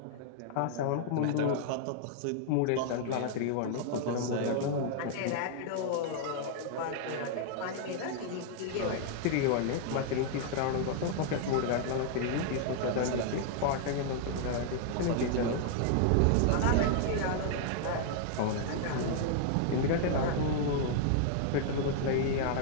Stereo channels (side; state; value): both; different; correlation -0.01